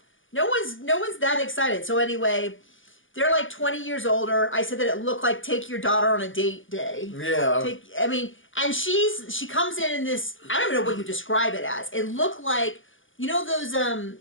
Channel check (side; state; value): right; late; 0.57 ms